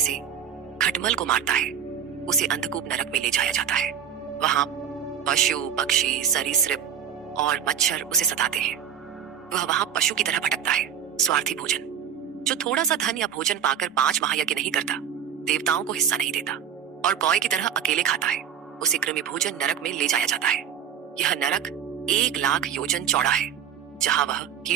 खटमल को मारता है उसे अंधकूप नरक में ले जाया जाता है। वहां पशु, पक्षी, सरीसृप और मच्छर उसे सताते हैं। वह वहां पशु की तरह भटकता है। स्वार्थी भोजन। जो थोड़ा सा धन या भोजन पाकर 5 महायज्ञ नहीं करता, देवताओं को हिस्सा नहीं देता और कौए की तरह अकेले खाता है उसे कृमि भोजन नरक में ले जाया जाता है। यह नरक 1,00,000 योजन चौड़ा है जहां वह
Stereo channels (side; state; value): left; quieter; 8.5 dB